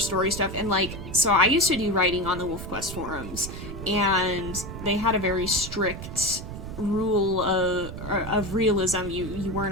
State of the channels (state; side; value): noise; right; rumble, 9 dB below the sound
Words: stuff, and so I used to do writing on the WolfQuest forums, and they had a very strict rule of realism. You